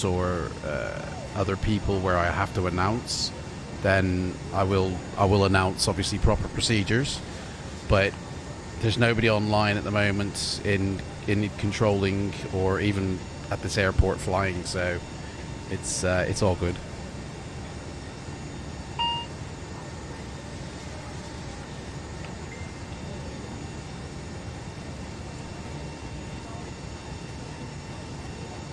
or other people where I have to announce, then I will announce obviously proper procedures. But there's nobody online at the moment in controlling or even at this airport flying, so it's all good.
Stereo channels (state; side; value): identical; both; correlation 1.00